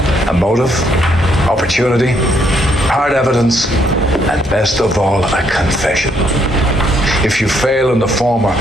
A motive, opportunity, hard evidence, and best of all, a confession. If you fail in the former,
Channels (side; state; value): both; normal; correlation 0.72